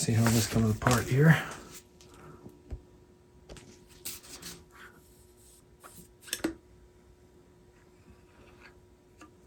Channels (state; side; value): identical; both; correlation 1.00